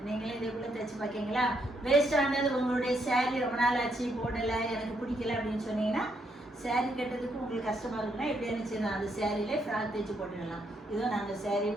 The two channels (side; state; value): both; normal; correlation 0.75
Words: நீங்களே இதே போல் தைச்சி பார்க்கிங்களா? வேஸ்ட் ஆனது உங்களுடைய சேரீ ரொம்ப நாள் ஆச்சு போடலை, எனக்கு பிடிக்கல அப்படின்னு சொன்னீங்கன்னா, சேரீ கட்டுறதுக்கு உங்களுக்கு கஷ்டமாக இருக்குன்னா எப்படி இருந்துச்சு, அந்த சேரீலே ஃப்ராக் தைச்சி போட்டுடலாம். இதுவும் நாங்கள் சேரீ